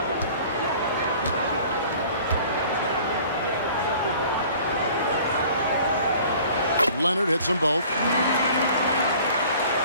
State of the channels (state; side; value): inverted; both; correlation -0.49